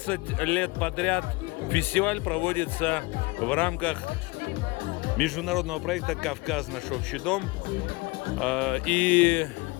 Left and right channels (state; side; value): quieter; right; 24.7 dB